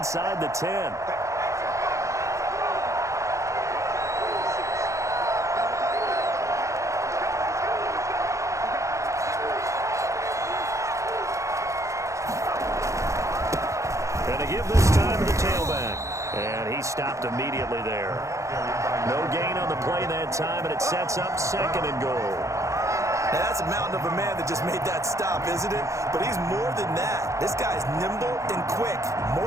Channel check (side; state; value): left; late; 0.15 ms